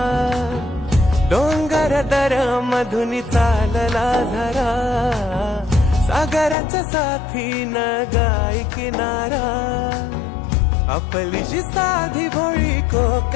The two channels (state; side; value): drops out; right; at 6.6 s